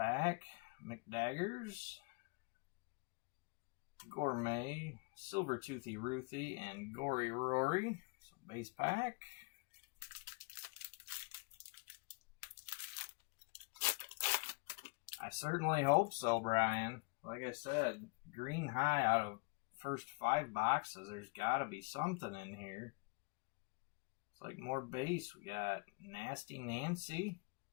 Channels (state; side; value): quieter; right; 30.2 dB